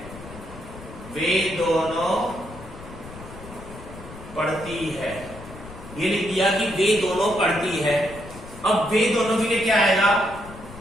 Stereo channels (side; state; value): left; noise; rumble, 15 dB below the sound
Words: वे दोनों पढ़ती है, ये लिख दिया कि वे दोनों पढ़ती है। अब वे दोनों के लिए क्या आएगा?